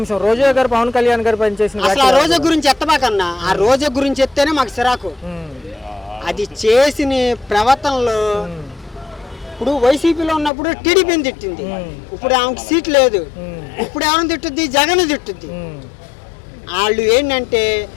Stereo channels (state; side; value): drops out; right; at 10.5 s